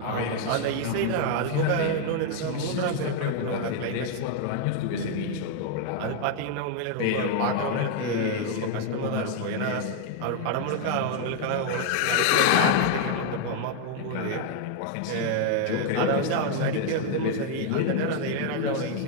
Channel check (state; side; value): different; both; correlation 0.00